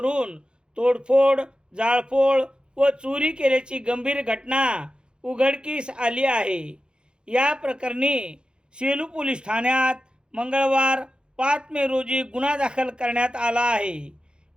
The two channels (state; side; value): late; left; 0.050 ms